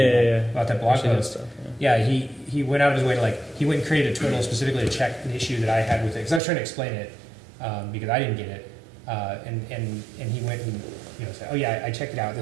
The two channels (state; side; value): drops out; left; at 6.4 s